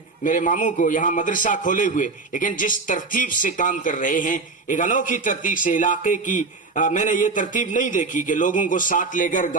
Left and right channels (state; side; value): quieter; left; 3.9 dB